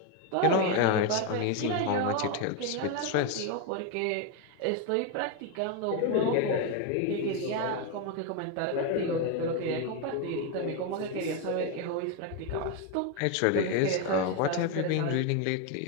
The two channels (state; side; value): different; both; correlation 0.02